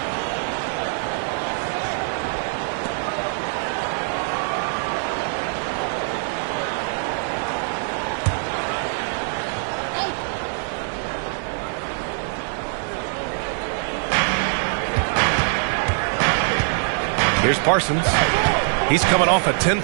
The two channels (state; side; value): silent; left; 60 dB below the other